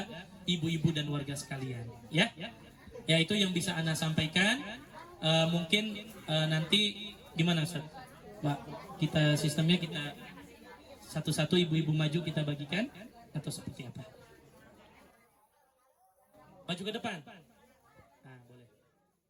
ibu-ibu dan warga sekalian, ya. Ya, itu yang bisa Ana sampaikan. Mungkin nanti gimana Ustaz? Pak, kita sistemnya kita satu-satu ibu-ibu maju kita bagikan atau seperti apa? Maju ke depan. Nah, boleh.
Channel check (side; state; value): both; identical; correlation 1.00